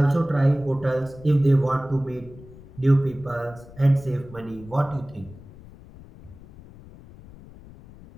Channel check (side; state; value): left; noise; rumble, 20 dB below the sound